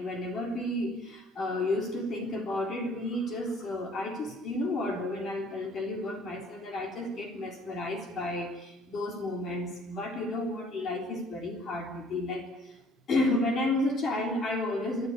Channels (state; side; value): normal; both; correlation 0.57